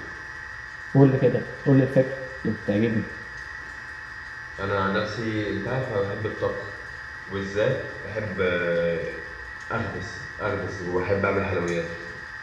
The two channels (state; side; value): identical; both; correlation 1.00